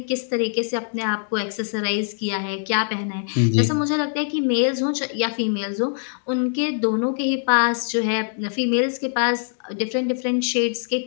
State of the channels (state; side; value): silent; right; digital silence